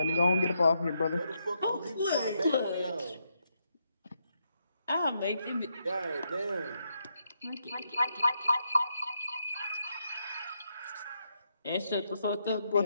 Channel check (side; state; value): both; inverted; correlation -0.80